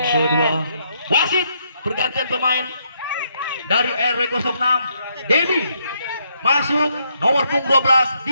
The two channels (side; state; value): both; inverted; correlation -0.75